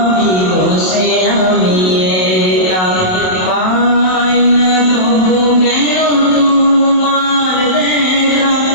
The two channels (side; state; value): right; late; 27 ms